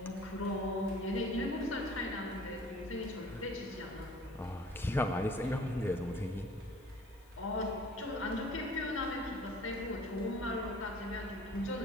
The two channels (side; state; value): left; noise; hiss, 29 dB below the sound